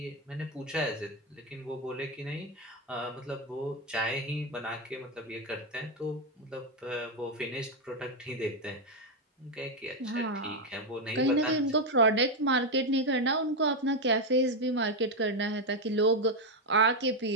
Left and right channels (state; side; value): normal; both; correlation 0.05